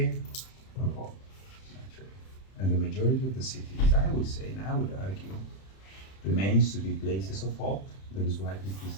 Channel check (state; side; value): late; right; 31 ms